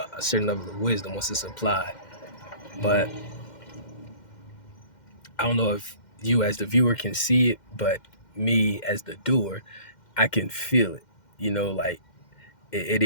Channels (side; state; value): right; late; 2.1 ms